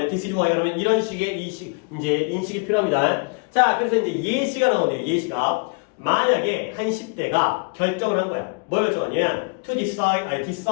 this is why가 나오면 이런 식의 이제 인식이 필요합니다. 자, 그래서 이제 예시가 나오네요. 예시가. 만약에 한 10대가 결정을 한 거야. 뭘 결정하냐면 to decide,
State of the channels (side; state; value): right; quieter; 32.9 dB